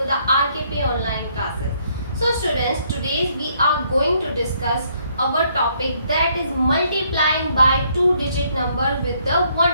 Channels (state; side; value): inverted; both; correlation -0.69